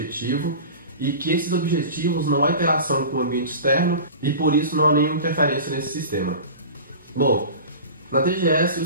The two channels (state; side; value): inverted; both; correlation -0.35